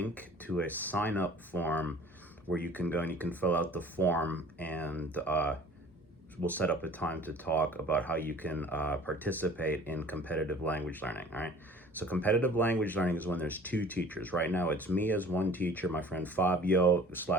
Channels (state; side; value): normal; both; correlation 0.48